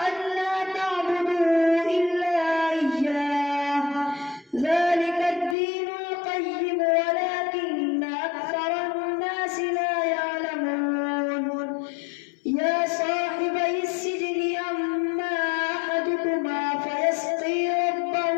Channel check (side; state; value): right; drops out; at 5.6 s